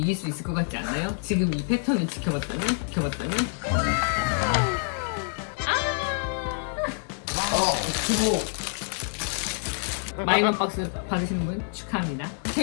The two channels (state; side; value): silent; right; 60 dB below the other